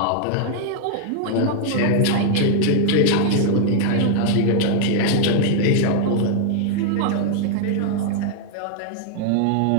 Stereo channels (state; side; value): different; both; correlation -0.01